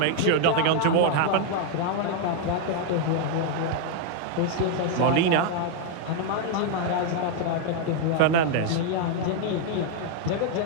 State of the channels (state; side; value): different; both; correlation 0.00